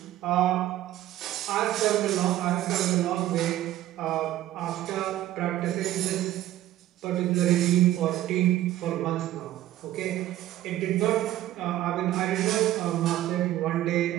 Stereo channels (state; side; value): quieter; left; 13.8 dB